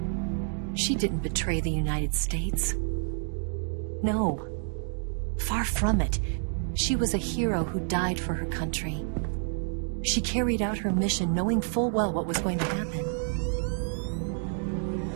She didn't betray the United States. No. Far from it. She was a hero who died for her country. She carried out her mission knowing full well what was going to happen.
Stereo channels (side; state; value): left; silent; 58 dB below the other